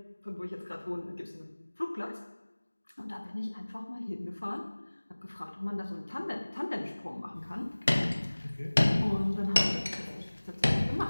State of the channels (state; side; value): inverted; both; correlation -1.00